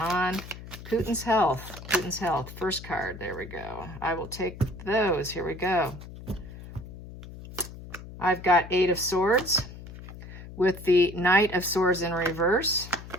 Putin's health. Putin's health. First card. There we go. I will take those. Here we go. I've got 8 of Swords with the Knight of Swords in reverse,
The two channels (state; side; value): noise; left; hum, 14 dB below the sound